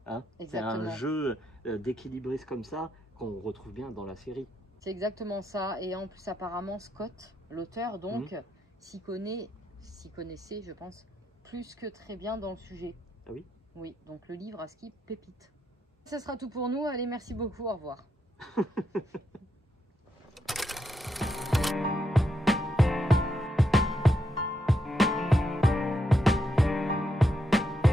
c'est un jeu d'équilibriste comme ça qu'on retrouve bien dans la série. C'est exactement ça, et en plus apparemment Scott, l'auteur, donc, s'y connaissait, je pense, plus que très bien dans le sujet. Ah oui? Oui, donc le livre à ski pépite. Ça sera tout pour nous, allez, merci beaucoup, au revoir.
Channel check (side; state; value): both; normal; correlation 0.80